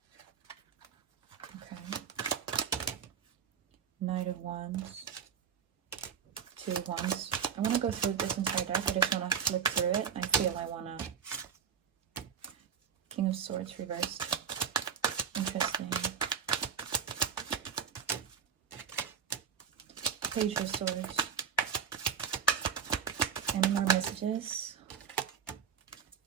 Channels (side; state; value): left; quieter; 7.4 dB